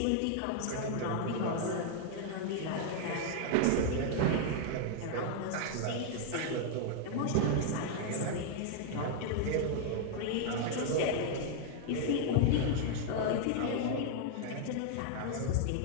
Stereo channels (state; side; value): different; both; correlation 0.00